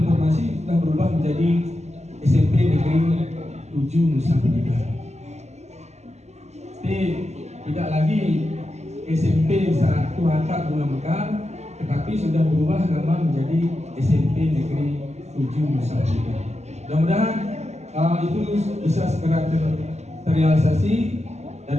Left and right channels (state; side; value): late; left; 0.32 ms